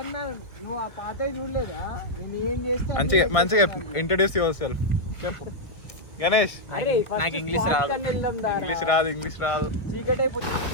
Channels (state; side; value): late; right; 1.3 ms